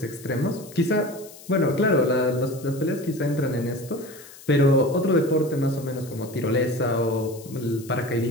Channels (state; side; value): noise; left; hiss, 19 dB below the sound